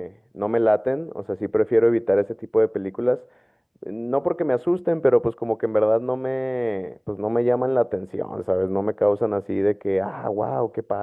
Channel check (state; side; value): identical; both; correlation 1.00